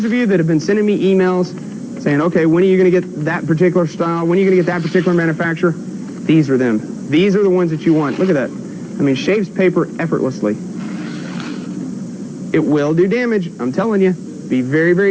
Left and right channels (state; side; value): identical; both; correlation 1.00